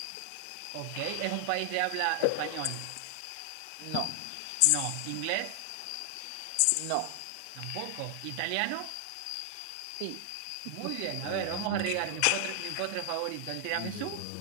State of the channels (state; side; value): different; both; correlation 0.00